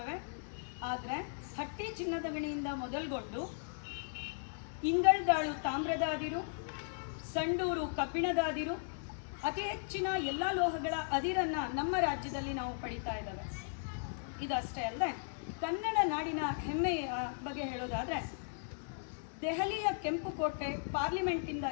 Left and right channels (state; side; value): silent; right; digital silence